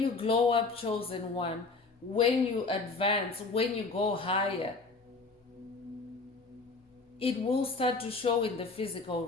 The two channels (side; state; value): right; quieter; 3.8 dB